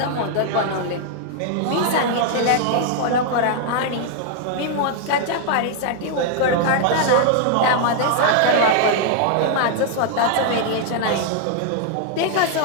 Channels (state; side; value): different; both; correlation 0.00